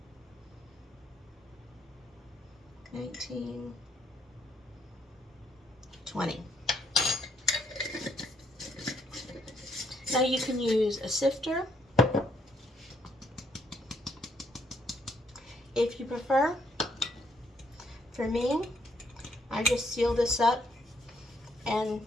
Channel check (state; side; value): normal; both; correlation 0.71